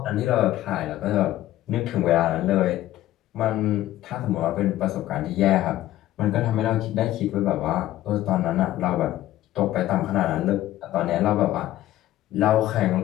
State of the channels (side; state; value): right; quieter; 14.4 dB